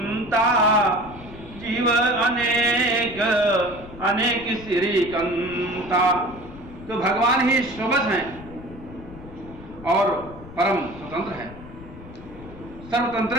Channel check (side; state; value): left; noise; rumble, 17 dB below the sound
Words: जीव अनेक अनेक सिरिकंता। तो भगवान ही स्वबस हैं और परम स्वतंत्र है, सर्वतंत्र